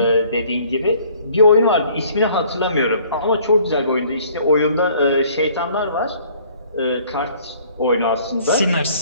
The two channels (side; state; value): both; inverted; correlation -0.57